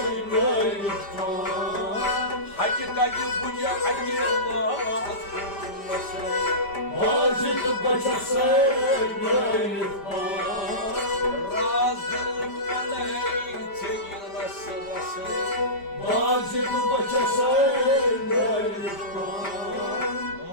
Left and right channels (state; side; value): late; right; 5.0 ms